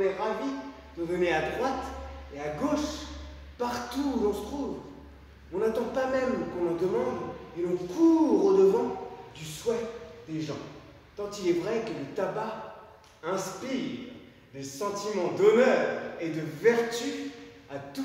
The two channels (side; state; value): both; identical; correlation 1.00